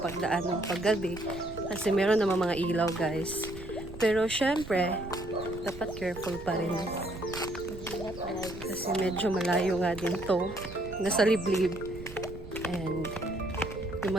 ng paggabi. Kasi meron naman mga ilaw, guys. Pero syempre, dapat careful pa rin. Kasi medyo malayo nga din to. Nasa liblib. And yung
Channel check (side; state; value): right; noise; rumble, 13 dB below the sound